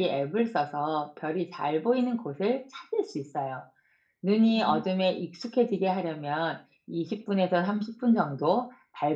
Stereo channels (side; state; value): both; identical; correlation 1.00